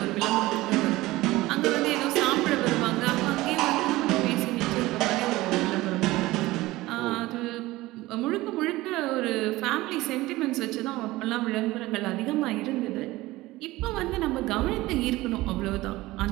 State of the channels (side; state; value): left; quieter; 18.6 dB